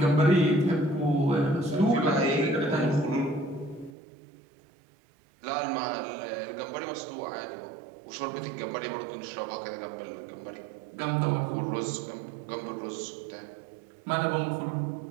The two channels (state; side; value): drops out; left; at 3.9 s